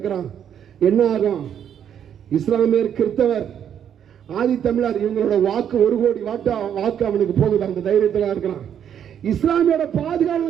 என்ன ஆகும்? இஸ்லாமியர், கிறிஸ்தவர், ஆதி தமிழர் இவங்களோட வாக்கு 1 கோடி வாக்கு அவனுக்கு போகுது. அந்த தைரியத்தில் இருக்கிறான். இஸ்லாமியோட பாதுகாப்பு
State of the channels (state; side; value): quieter; left; 9.0 dB